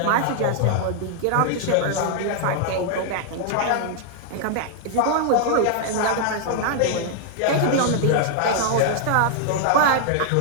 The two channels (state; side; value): different; both; correlation -0.01